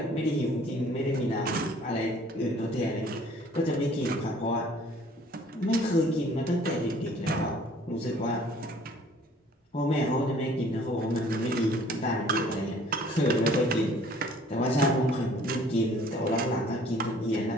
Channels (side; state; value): both; normal; correlation 0.55